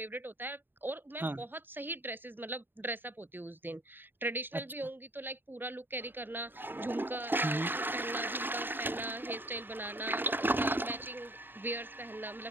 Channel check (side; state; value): left; late; 0.096 ms